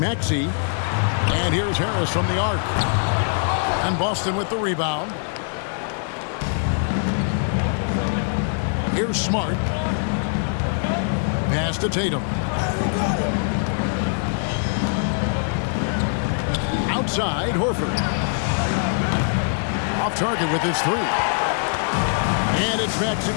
And here's Harris from the arc. And Boston with the rebound. Here's Smart. Pass to Tatum. Outside, Horford. Off target with his 3. And it's Maxey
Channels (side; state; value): right; silent; digital silence